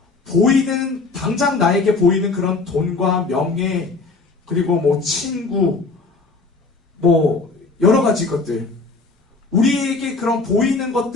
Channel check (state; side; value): quieter; right; 3.8 dB